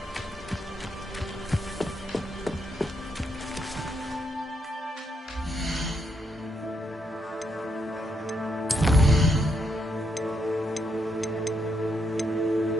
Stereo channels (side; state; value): both; normal; correlation 0.79